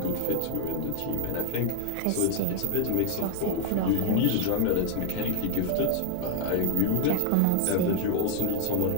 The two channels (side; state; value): both; different; correlation 0.00